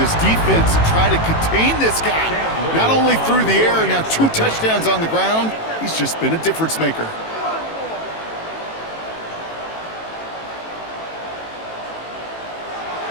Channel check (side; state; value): right; late; 18 ms